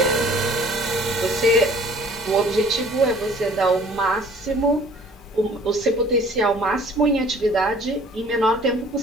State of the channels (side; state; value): both; normal; correlation 0.52